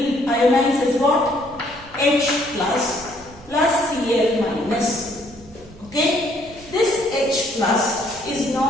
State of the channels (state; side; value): noise; right; rumble, 22 dB below the sound